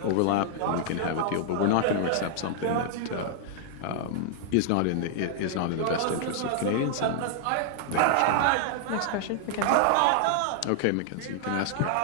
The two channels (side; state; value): both; different; correlation -0.01